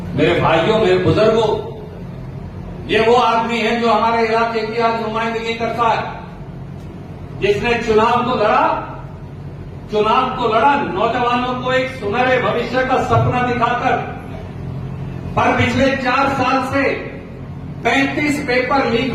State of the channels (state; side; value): identical; both; correlation 1.00